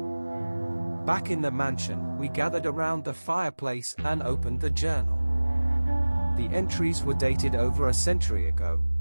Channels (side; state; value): both; inverted; correlation -1.00